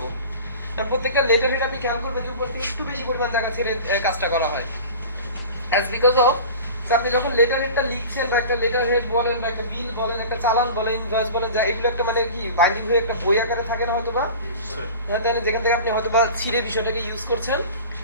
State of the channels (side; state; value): both; inverted; correlation -0.37